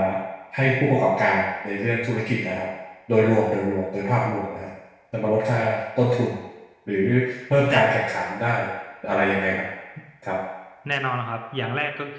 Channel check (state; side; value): identical; both; correlation 1.00